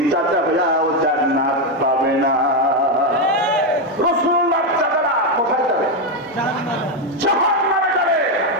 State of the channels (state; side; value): normal; both; correlation 0.06